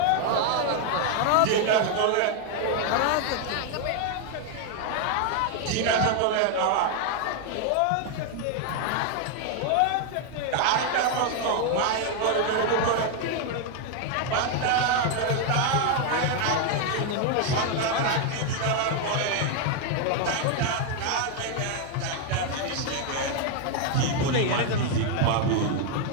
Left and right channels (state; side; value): different; both; correlation 0.01